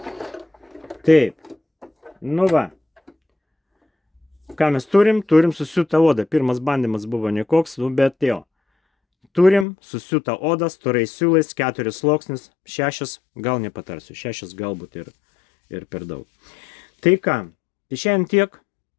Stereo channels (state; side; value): drops out; right; at 9.7 s